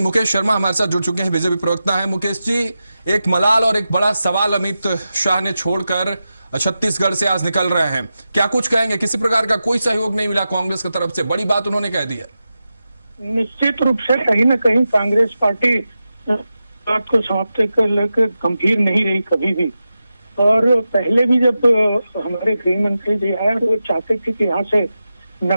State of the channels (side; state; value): both; inverted; correlation -0.92